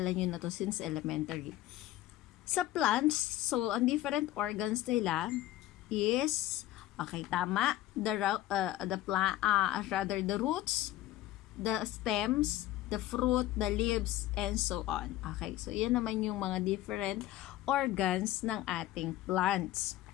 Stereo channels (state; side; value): quieter; right; 14.8 dB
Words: nyo na to since elementary. Sa plants, so, ang different organs nila is, okay, tama, the roots, the stems, the fruit, the leaves, and so on. Okay, so yan naman yung mga different organs ng ating plants.